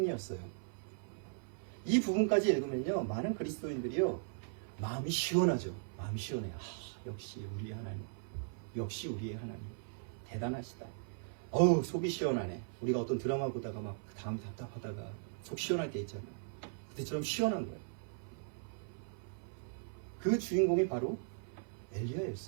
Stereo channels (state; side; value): silent; left; 52 dB below the other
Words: 이 부분까지 읽으면요 많은 그리스도인들이요 마음이 시원하죠. 마음이 시원해요. 역시 우리의 하나님, 역시 우리의 하나님 대단하시다. 어우 속이 시원하네. 우리가 어떤 드라마 보다가 막 다음 답답하다가 속 시원할 때 있잖아요. 그때처럼 시원한 거예요. 그 주인공이 바로